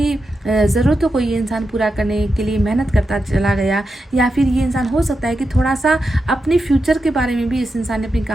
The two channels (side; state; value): both; normal; correlation 0.88